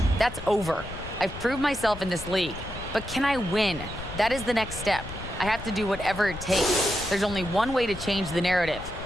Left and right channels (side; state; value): left; noise; rumble, 12 dB below the sound